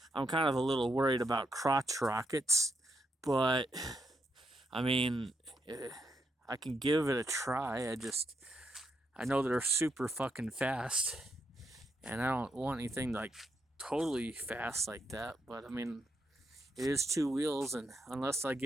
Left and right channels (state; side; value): normal; both; correlation 0.79